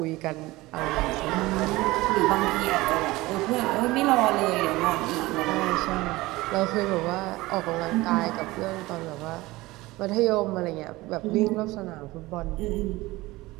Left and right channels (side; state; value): left; quieter; 19.7 dB